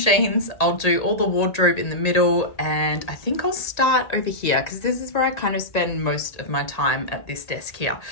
I'll do all the wardrobe in the middle, and I think I'll start over here because this is where I kind of spend most of my time at this desk here.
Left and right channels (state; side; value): late; right; 1.8 ms